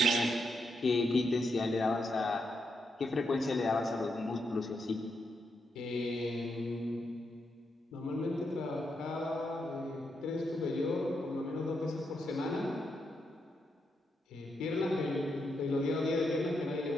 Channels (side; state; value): both; normal; correlation 0.82